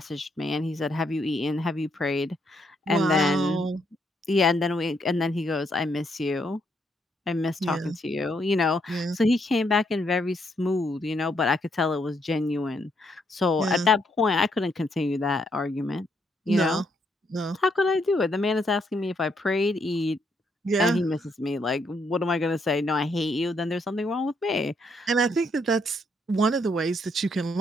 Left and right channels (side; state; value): both; normal; correlation 0.74